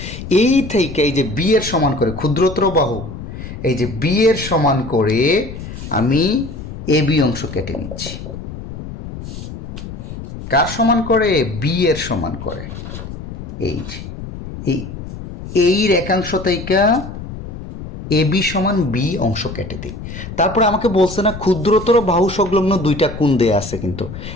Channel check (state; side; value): noise; left; rumble, 10 dB below the sound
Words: এই থেকে এই যে বি এর সমান করে ক্ষুদ্রতর বাহু, এই যে বি এর সমান করে আমি এ বি অংশ কেটে নিচ্ছি। কার সমান করে? বি এর সমান করে। এই রেখাংশ থেকে এ বি সমান বি অংশ কেটে দিই। তারপরে আমাকে বলছে না ক্ষুদ্রতর বাহু সংলগ্ন দুইটা কোণ দেয়া আছে কিন্তু